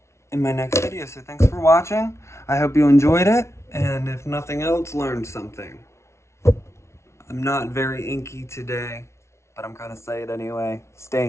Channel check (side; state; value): right; late; 0.13 ms